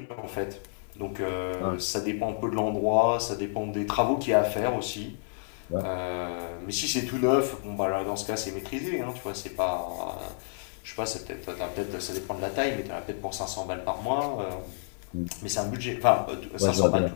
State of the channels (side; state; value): right; silent; 58 dB below the other